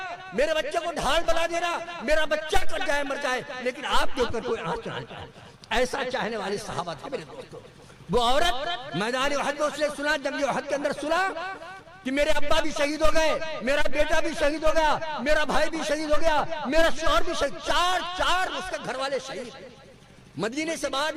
میرے بچے کو ڈھال بنا دینا، میرا بچہ کر جائے مر جائے لیکن آپ کے اوپر کوئی آنچ نہ جائے۔ ایسا چاہنے والے صحابہ تھے میرے دوستوں۔ وہ عورت میدان احد میں اس نے سنا، جنگ احد کے اندر سنا کہ میرے ابا بھی شہید ہو گئے، میرا بیٹا بھی شہید ہو گیا، میرا بھائی بھی شہید ہو گیا، میرا شوہر بھی شہید، چار اس کے گھر والے شہید۔ مدینے سے باہر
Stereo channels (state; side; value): identical; both; correlation 1.00